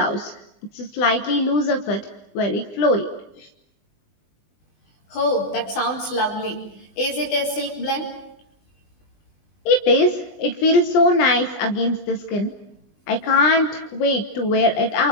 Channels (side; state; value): right; late; 20 ms